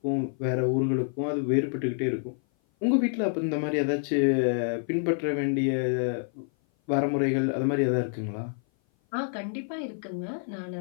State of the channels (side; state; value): right; silent; 56 dB below the other